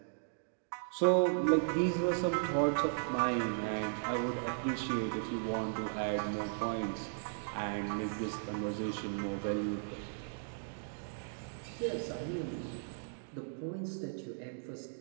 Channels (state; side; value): silent; left; digital silence